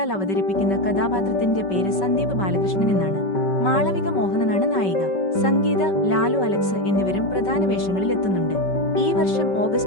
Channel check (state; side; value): late; right; 5.2 ms